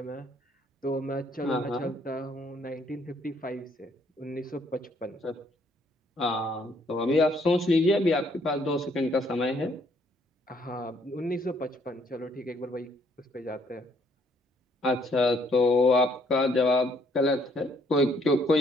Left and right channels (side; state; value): both; normal; correlation 0.67